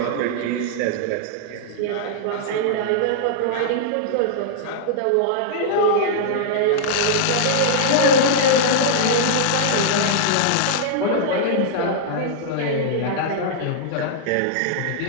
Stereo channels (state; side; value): different; both; correlation -0.02